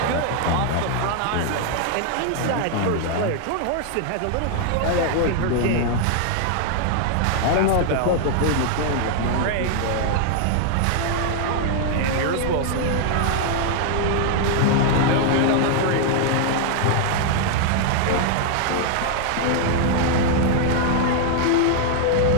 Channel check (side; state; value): both; different; correlation 0.00